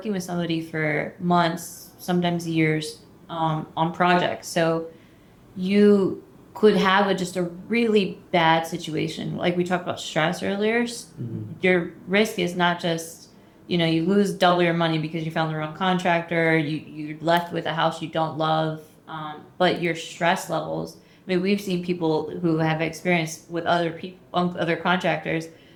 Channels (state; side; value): identical; both; correlation 1.00